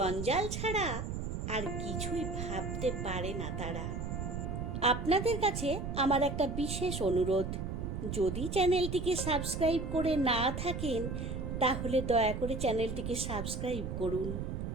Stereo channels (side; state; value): right; noise; rumble, 4 dB below the sound